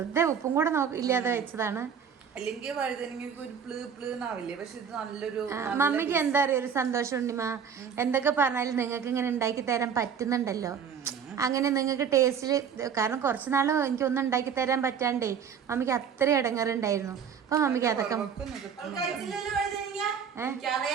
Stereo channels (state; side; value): quieter; left; 7.3 dB